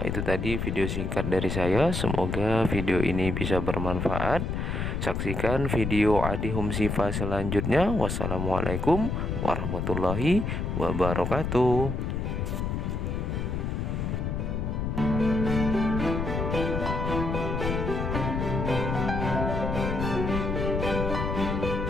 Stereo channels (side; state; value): left; noise; rumble, 2 dB below the sound